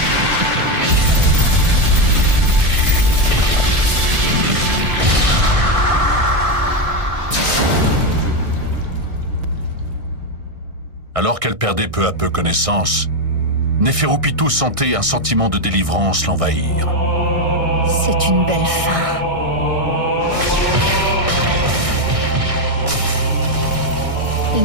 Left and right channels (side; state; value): left; late; 1.6 ms